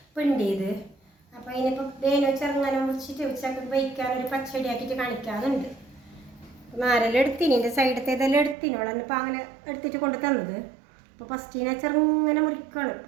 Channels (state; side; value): drops out; left; at 8.6 s